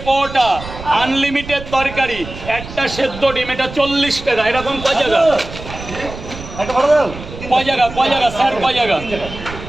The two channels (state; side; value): noise; right; rumble, 12 dB below the sound